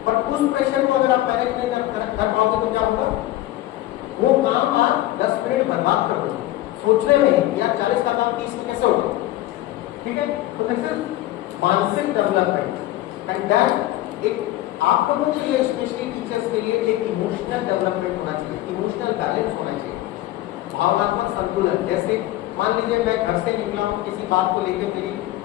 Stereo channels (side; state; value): right; quieter; 15.7 dB